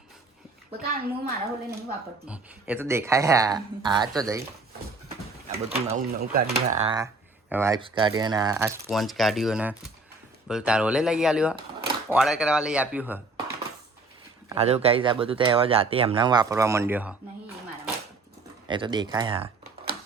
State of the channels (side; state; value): left; quieter; 3.4 dB